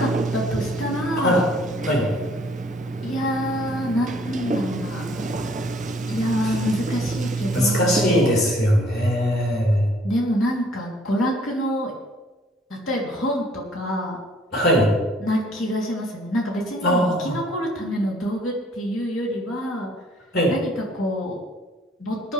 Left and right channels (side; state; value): both; normal; correlation 0.60